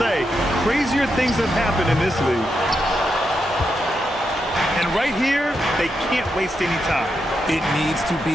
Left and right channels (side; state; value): both; normal; correlation 0.84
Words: Crazier things have happened in this league. And right here, they can't waste any time. It needs to